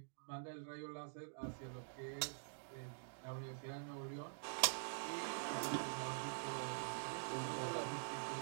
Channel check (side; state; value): left; silent; digital silence